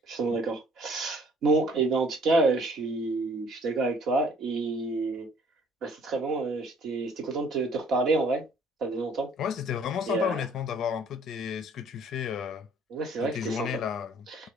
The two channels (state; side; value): normal; both; correlation 0.57